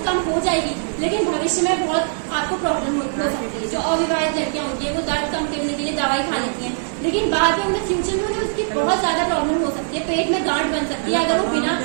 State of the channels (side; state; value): left; silent; digital silence